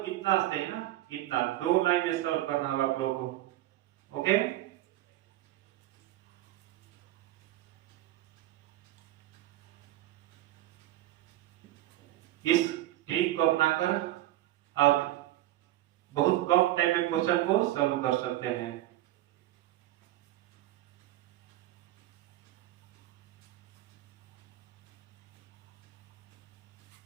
इतना से है ना, इतना 2 लाइन में सॉल्व करना होगा आप लोगों को। ओके, इस ट्रिक को अपनाकर आप बहुत कम टाइम में क्वेश्चन को सॉल्व कर सकते हैं।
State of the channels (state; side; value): quieter; left; 15.2 dB